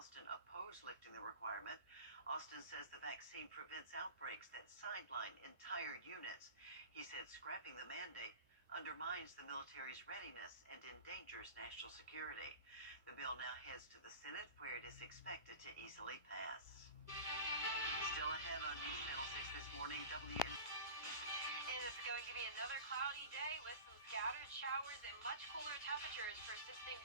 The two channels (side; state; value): both; inverted; correlation -0.35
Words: opposed lifting the requirement. Austin says the vaccine prevents outbreaks that sideline entire units. He said scrapping the mandate undermines the military's readiness and endangers national security. The bill now heads to the Senate, where it is expected to easily pass. Still ahead on News Channel 6 this morning, It is going to be another cloudy day with some scattered showers and much cooler temperatures persisting